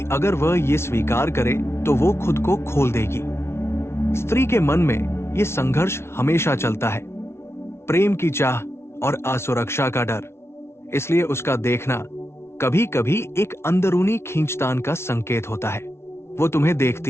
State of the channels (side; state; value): right; late; 0.12 ms